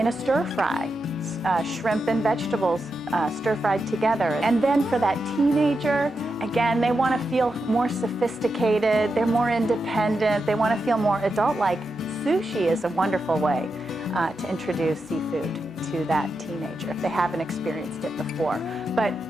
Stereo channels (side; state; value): right; noise; hum, 29 dB below the sound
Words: a stir fry, shrimp and vegetables stir fried together. And then for that teenager, again, they want to feel more sophisticated, they're more independent, they want to feel more adult-like. Sushi is a wonderful way to introduce seafood to that teenager if they haven't experienced it before. But